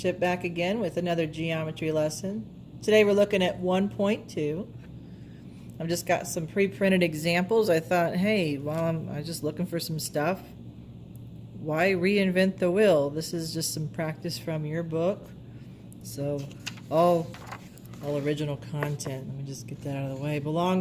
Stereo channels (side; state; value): both; identical; correlation 1.00